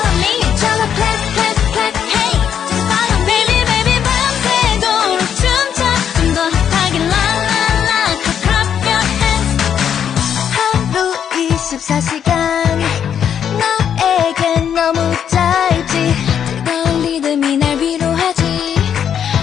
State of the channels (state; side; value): quieter; right; 8.6 dB